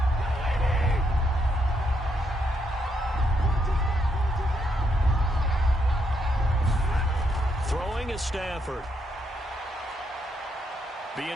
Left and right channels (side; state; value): both; normal; correlation 0.77